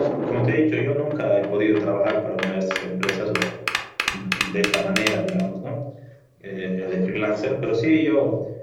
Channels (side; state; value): both; identical; correlation 1.00